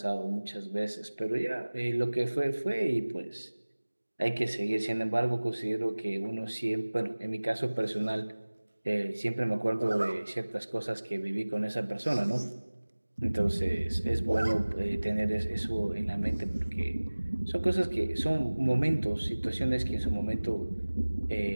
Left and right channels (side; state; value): both; inverted; correlation -1.00